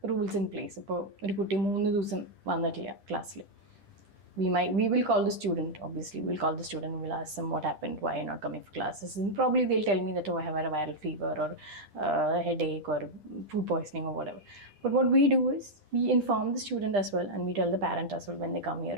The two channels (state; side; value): late; left; 10 ms